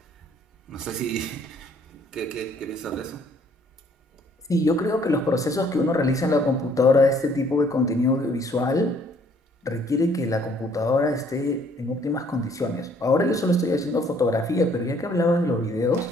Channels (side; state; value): both; normal; correlation 0.62